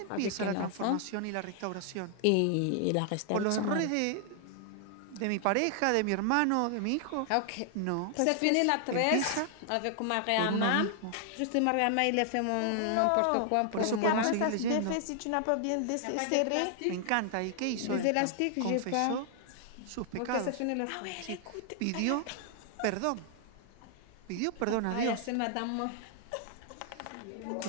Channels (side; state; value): both; different; correlation 0.00